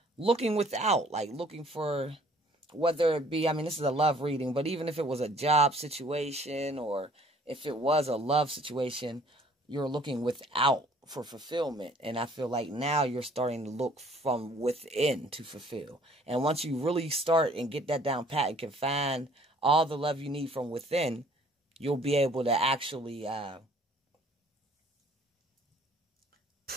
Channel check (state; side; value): normal; both; correlation 0.57